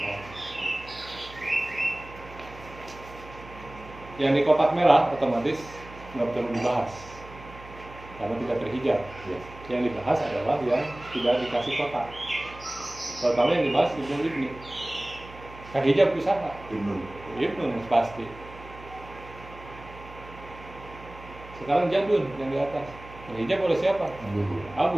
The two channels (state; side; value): noise; right; hum, 17 dB below the sound